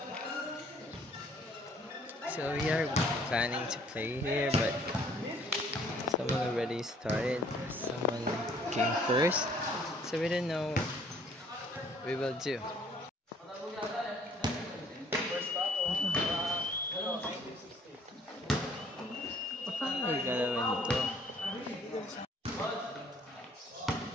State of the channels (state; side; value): normal; both; correlation 0.60